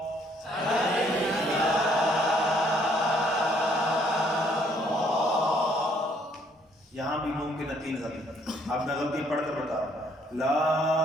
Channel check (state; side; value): normal; both; correlation 0.65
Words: یہاں بھی ممکن ہے 3 غلطی. اب میں غلطی پڑھ کر بتا رہا ہوں.